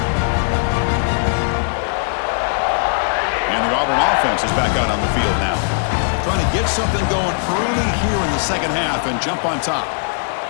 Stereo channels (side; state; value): right; silent; 64 dB below the other